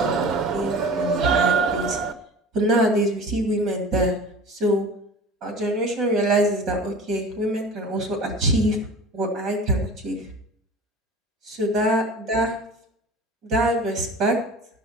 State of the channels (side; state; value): both; normal; correlation 0.39